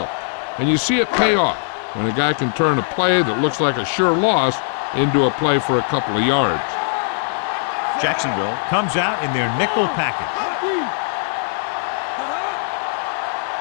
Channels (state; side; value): silent; right; digital silence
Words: And you see it pay off when a guy can turn a play that looks like a sure loss into a play for a couple of yards. Jacksonville comes out in their nickel package.